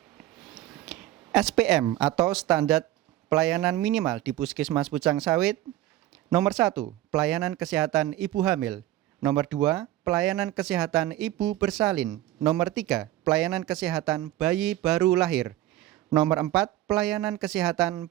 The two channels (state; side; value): quieter; left; 14.4 dB